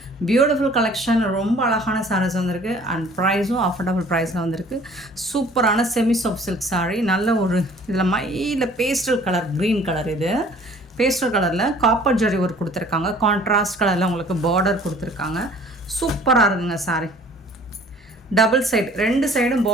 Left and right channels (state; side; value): normal; both; correlation 0.52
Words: பியூட்டிஃபுல் கலெக்ஷன், ரொம்ப அழகான சாரீஸ் வந்திருக்கு அண்ட் ப்ரைஸும் அஃபோர்டபுள் ப்ரைஸில் வந்திருக்கு. சூப்பரான செமி சாஃப்ட் சில்க் சாரீ, நல்ல ஒரு இதில் மையில் பேஸ்டல் கலர், க்ரீன் கலர். இது பேஸ்டல் கலரில் காப்பர் ஜரி ஒர்க் கொடுத்துருக்காங்க. கான்ட்ராஸ்ட் கலரில் உங்களுக்கு பார்டர் கொடுத்துருக்காங்க. சூப்பராக இருக்குங்க சாரி. டபுள் சைடு, ரெண்டு சைடும்